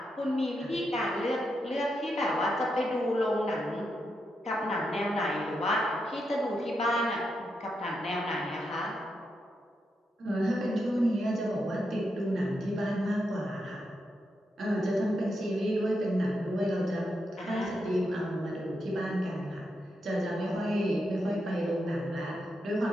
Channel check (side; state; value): both; normal; correlation 0.84